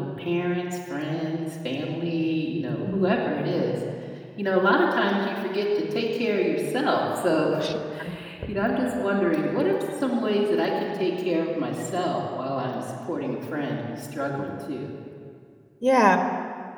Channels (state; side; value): identical; both; correlation 1.00